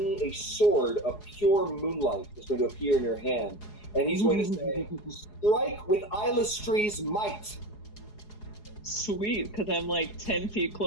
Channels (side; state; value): right; late; 4.8 ms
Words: sword of pure moonlight is going to appear in your hand. And he's going to say, "Strike with Illustri's might." Sweet, because I'm like 10 feet